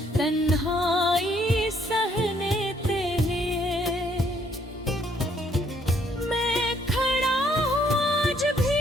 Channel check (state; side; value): normal; both; correlation 0.67